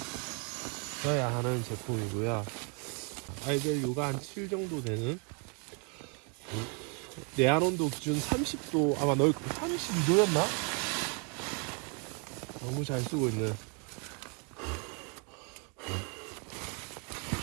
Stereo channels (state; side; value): quieter; left; 35.0 dB